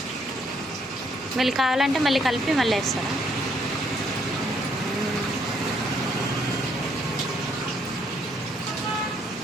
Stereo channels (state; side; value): normal; both; correlation 0.70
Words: మళ్ళీ కావాలంటే మళ్ళీ కలిపి మళ్ళీ వేస్తారా?